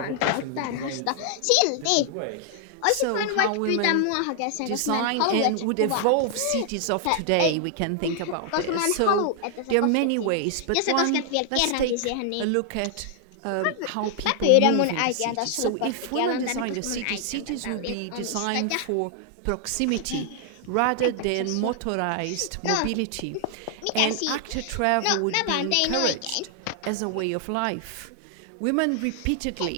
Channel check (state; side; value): different; both; correlation 0.00